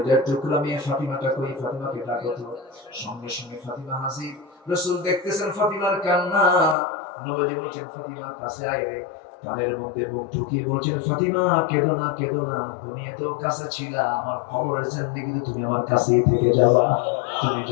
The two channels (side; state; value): right; drops out; at 6.8 s